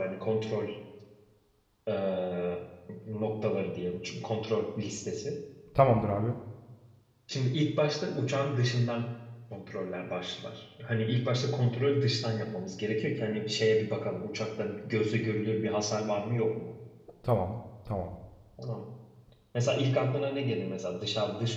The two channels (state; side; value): identical; both; correlation 1.00